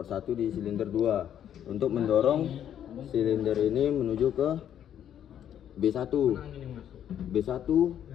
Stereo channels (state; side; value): quieter; right; 10.0 dB